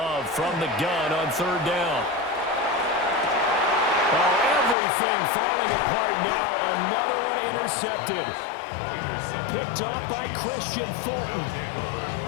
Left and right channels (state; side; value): drops out; right; at 4.8 s